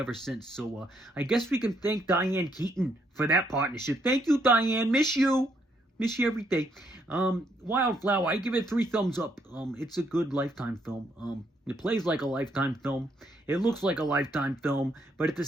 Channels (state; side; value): normal; both; correlation 0.72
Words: since. So I guess we can thank Diane Keaton for that partnership. Thank you, Diane. Miss you. Miss you every day. Wildflower, I give it 3 thumbs up. It's a good Lifetime film. It plays like a Lifetime film. It looks like a Lifetime film. But at the